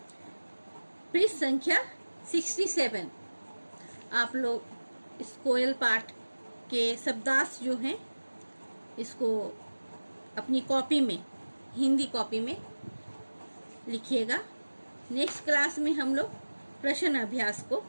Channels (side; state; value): both; inverted; correlation -1.00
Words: पृष्ठ संख्या 67 आप लोग इस कोयल पाठ के शब्दार्थ जो हैं इसको अपनी कॉपी में, हिंदी कॉपी में लिखिएगा। नेक्स्ट क्लास में हम लोग प्रश्न अभ्यास को